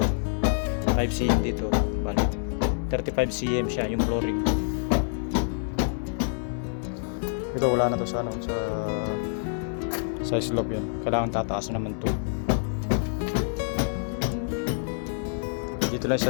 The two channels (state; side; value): silent; right; 58 dB below the other